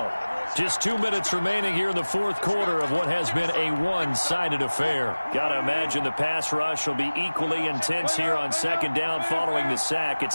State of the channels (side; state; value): both; inverted; correlation -1.00